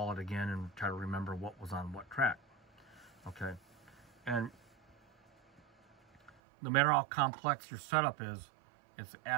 it again and try to remember what was on what track. Okay, and no matter how complex your setup is, it's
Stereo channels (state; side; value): drops out; left; at 6.3 s